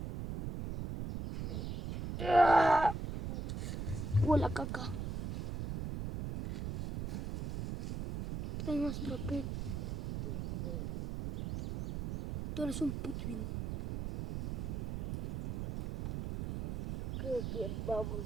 Huele caca. Trae más papel. Tú eres un putín. Creo que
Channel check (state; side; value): noise; right; rumble, 4 dB below the sound